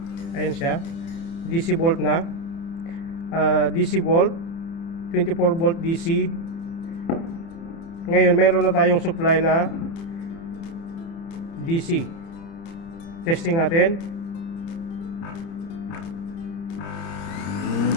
Ayan siya. DC volt na. DC volt. 24 volt DC. Ngayon mayroon na tayong supply na DC. Testing natin.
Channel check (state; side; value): late; right; 30 ms